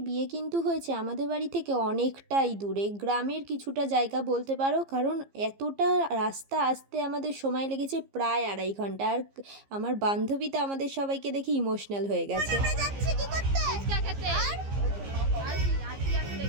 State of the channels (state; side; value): late; left; 15 ms